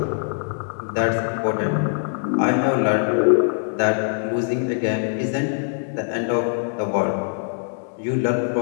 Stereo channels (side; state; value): right; silent; digital silence